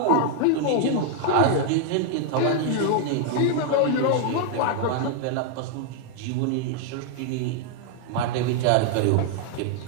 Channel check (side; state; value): both; different; correlation 0.00